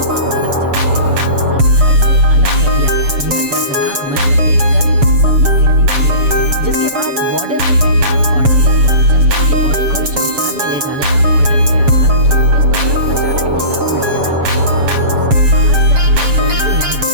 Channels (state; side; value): late; left; 7.2 ms